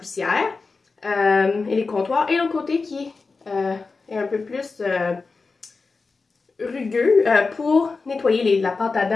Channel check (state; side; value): quieter; right; 4.2 dB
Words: et les comptoirs. Et l'autre côté qui est un peu plus rugueux pour nettoyer la pâte à